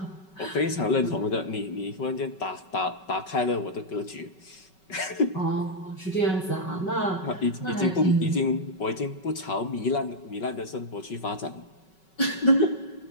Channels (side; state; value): right; late; 5.3 ms